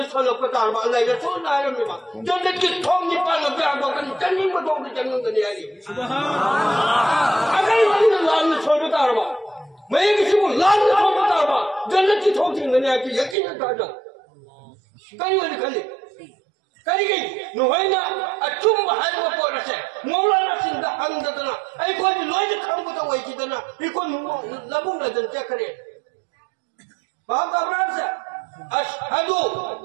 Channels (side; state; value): left; drops out; at 13.4 s